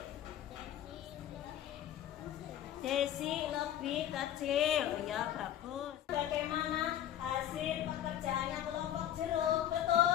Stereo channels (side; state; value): right; quieter; 11.4 dB